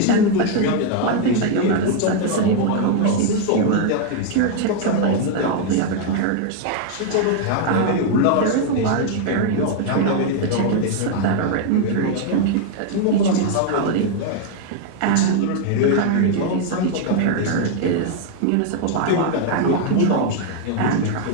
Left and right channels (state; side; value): different; both; correlation 0.00